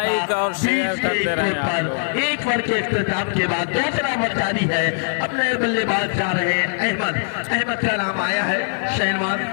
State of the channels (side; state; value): right; silent; 58 dB below the other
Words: और शेयर करते रहे। 1 ओवर के इख्तिताम के बाद दूसरा ओवर जारी है। अब नए बल्लेबाज जा रहे हैं अहमद का नाम आया है। शहनवाज